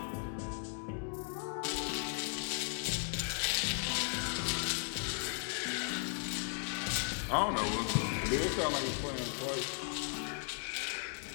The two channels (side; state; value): right; silent; 53 dB below the other